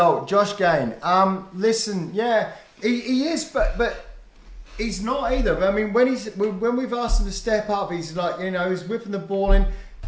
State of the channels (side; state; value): both; identical; correlation 1.00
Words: Josh Gain. Listen, yeah, he is, but he's not either. I mean, when we've asked him to step up, he's like, he's whipping the ball in.